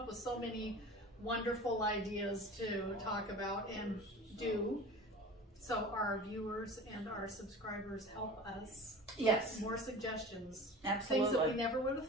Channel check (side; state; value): both; normal; correlation 0.38